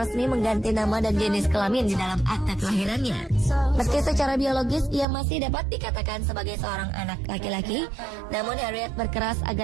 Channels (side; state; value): left; drops out; at 5.1 s